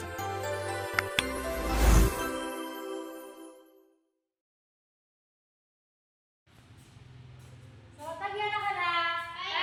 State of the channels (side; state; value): both; identical; correlation 1.00